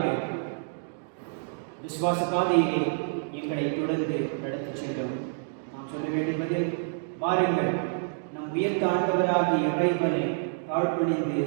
விசுவாச பாதையிலே எங்களை தொடர்ந்து நடத்தி செல்லும். நாம் சொல்ல வேண்டியது, வாருங்கள் நம் உயர்த்த ஆண்டவராகிய இறைவனை தாழ்பணிந்து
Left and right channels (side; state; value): left; silent; digital silence